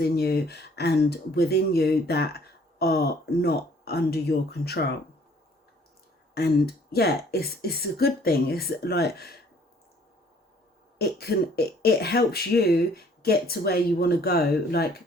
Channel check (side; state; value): both; normal; correlation 0.58